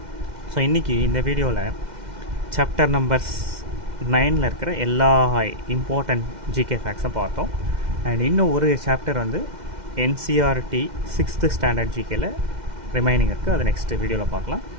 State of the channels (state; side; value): late; left; 2.1 ms